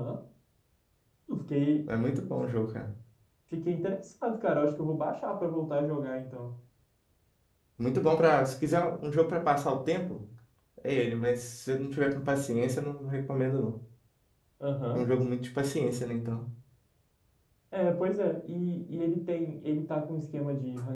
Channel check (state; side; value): identical; both; correlation 1.00